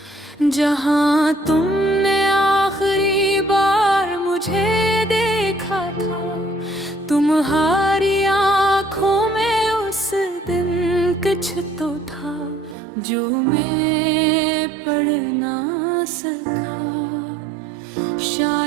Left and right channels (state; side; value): drops out; left; at 12.8 s